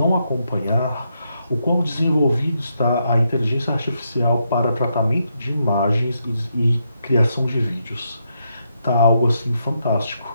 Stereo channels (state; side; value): inverted; both; correlation -0.80